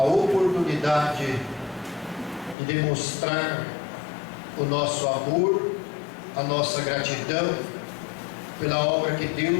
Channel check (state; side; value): drops out; right; at 2.6 s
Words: oportunidade de demonstrar o nosso amor, a nossa gratidão pela obra que